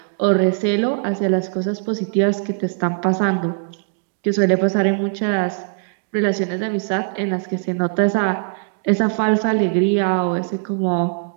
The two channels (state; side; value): silent; left; digital silence